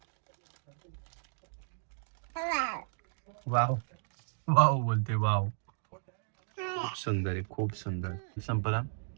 वाव वाव बोलते, वाव. खूप सुंदर आहे, खूप सुंदर. संपला,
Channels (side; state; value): left; silent; digital silence